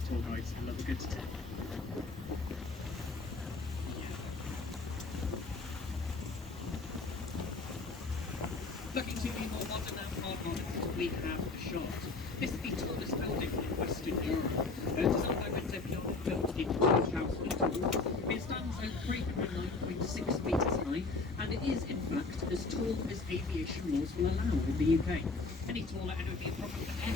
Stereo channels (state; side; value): quieter; right; 3.8 dB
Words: tour guides and love a good tip. Looking to the more modern and hard modern, we have the Shard. This is the tallest building in Western Europe. Designed by Windsor Piano, built in 2002. It stands at 309.6 metres high, and it is in fact as tall as aviation laws will allow in the UK. Any taller and it would be a problem for